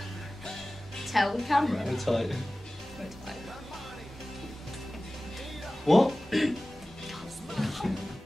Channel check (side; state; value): both; normal; correlation 0.97